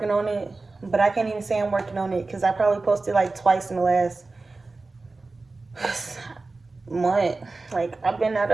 on it, but I can't even say I'm working on it because I probably posted like twice in the last month. Like, I've been at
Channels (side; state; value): left; quieter; 3.5 dB